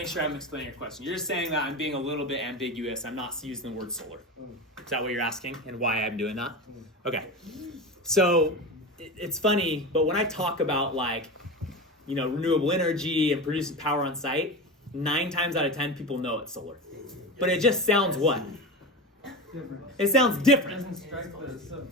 sure I'm explaining your question. You're just saying that I'm being a little bit ambiguous. I'm not using the word solar. Is that what you're asking, and why I'm doing that? Okay. So it's funny, but when I talk about renewable energy and producing power on site, 9 times out of 10 people know it's solar. But it just sounds what? It sounds different.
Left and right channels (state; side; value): normal; both; correlation 0.25